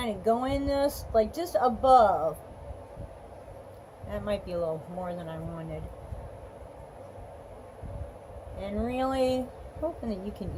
of go in this, like just above. That might be a little more than I wanted. And really hoping that you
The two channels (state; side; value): identical; both; correlation 1.00